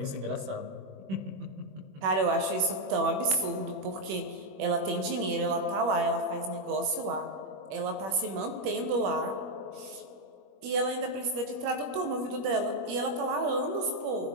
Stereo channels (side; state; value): left; late; 21 ms